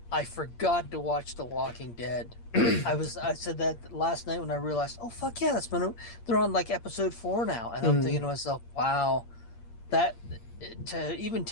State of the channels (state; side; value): late; right; 8.6 ms